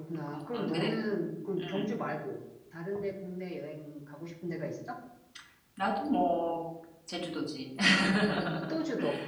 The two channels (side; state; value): both; identical; correlation 1.00